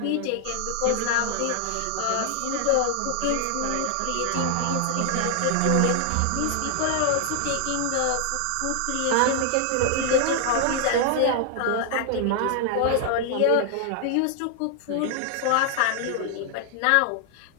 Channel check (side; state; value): both; different; correlation 0.00